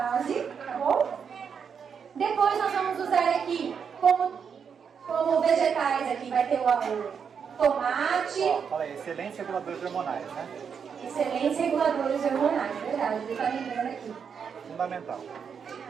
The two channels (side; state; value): left; quieter; 6.8 dB